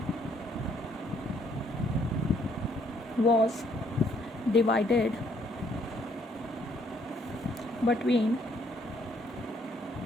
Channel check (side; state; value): both; normal; correlation 0.67